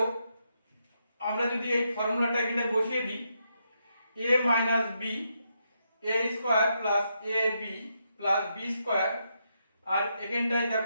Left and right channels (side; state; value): both; inverted; correlation -0.81